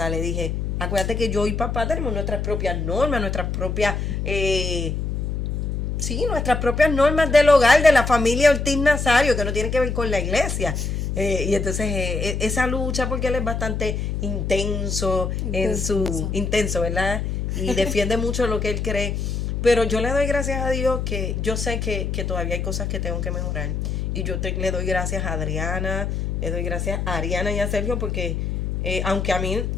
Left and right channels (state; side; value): noise; left; hum, 2 dB below the sound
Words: le dije, acuérdate que yo y papá tenemos nuestras propias normas, nuestras propias, nuestras propias normas del hogar, de la familia Ortiz Nazario, que no tiene que ver con la iglesia. Y entonces esa lucha, porque él es bastante intenso, intenso, ¿verdad? Y defiende mucho lo que él cree. Pero yo le doy gracias a Dios, que yo sé que todavía hay cosas que tengo que mejorar. Y le doy gracias a Adriana, le doy gracias a Ariana y a Sergio, porque aunque a mí